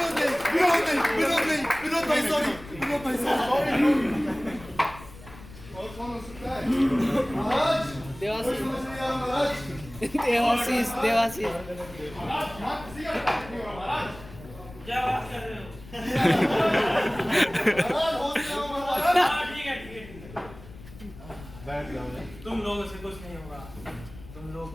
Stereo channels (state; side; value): noise; left; rumble, 17 dB below the sound